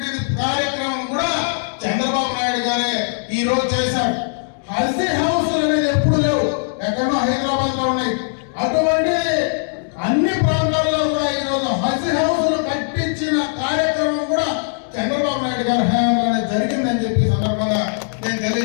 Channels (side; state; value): right; silent; digital silence